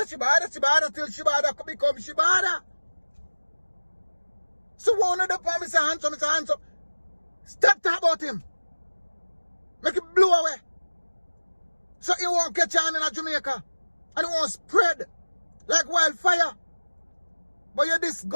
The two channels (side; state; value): both; inverted; correlation -1.00